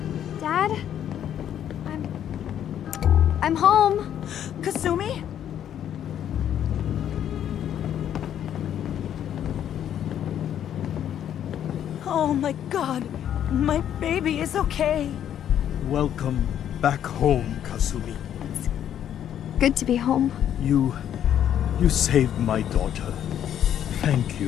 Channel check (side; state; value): right; quieter; 10.1 dB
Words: Dad? I'm home. Kasumi? Oh my god. My baby is okay. Welcome back home, Kasumi. Good to be home. You saved my daughter. Thank